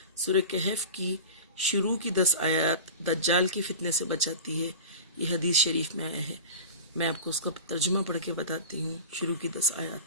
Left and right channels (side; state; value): both; inverted; correlation -0.31